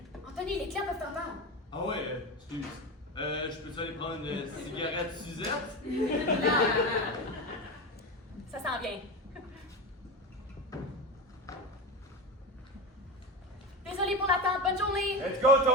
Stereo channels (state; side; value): normal; both; correlation 0.22